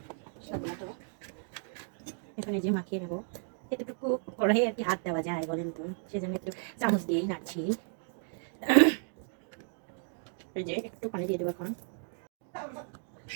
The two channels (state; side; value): silent; left; 55 dB below the other